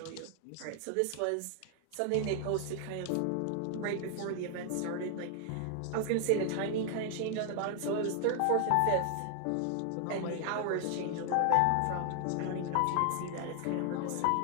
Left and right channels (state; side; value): different; both; correlation 0.00